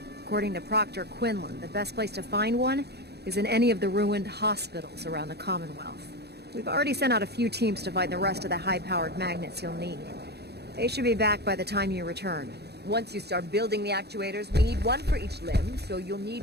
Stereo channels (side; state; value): left; late; 0.48 ms